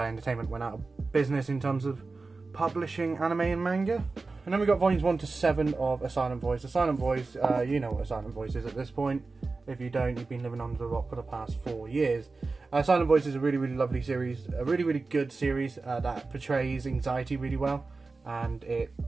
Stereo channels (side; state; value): left; quieter; 3.8 dB